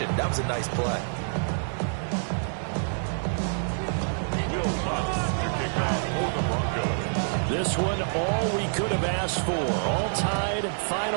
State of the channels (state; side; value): silent; left; digital silence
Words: That was a nice play. This one, all we could have asked for. All tied,